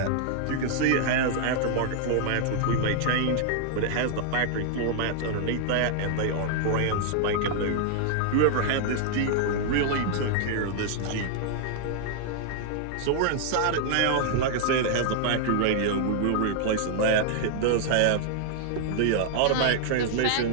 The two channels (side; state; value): both; different; correlation 0.00